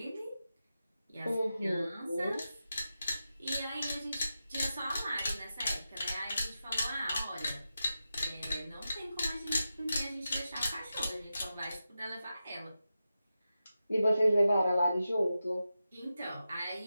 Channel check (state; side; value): inverted; both; correlation -0.91